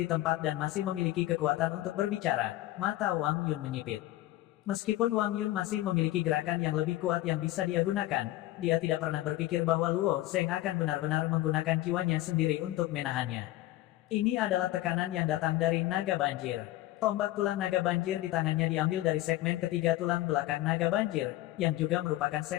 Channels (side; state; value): right; quieter; 16.2 dB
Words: tempat dan masih memiliki kekuatan untuk berbicara, mata Wang Yun menyipit. Meskipun Wang Yun masih memiliki gerakan yang lebih kuat yang bisa dia gunakan, dia tidak pernah berpikir bahwa Luo Zheng akan benar-benar menggunakan jiwanya sendiri untuk menahannya. Ini adalah tekanan yang datang dari naga banjir. Tombak tulang naga banjir di tangannya diambil dari segmen ketiga tulang belakang naga banjir, yang juga merupakan